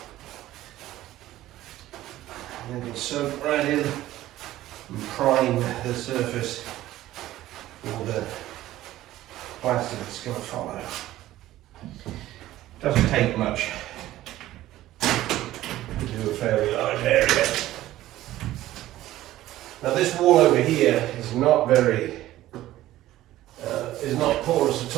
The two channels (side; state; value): left; quieter; 14.9 dB